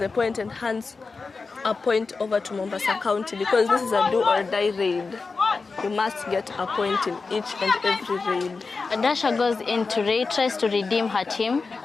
point and hands a point over to Mombasa County because this is a do or die raid. You must get a point in each and every raid. Adasha goes into raid, tries to redeem her team.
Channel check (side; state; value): right; quieter; 4.3 dB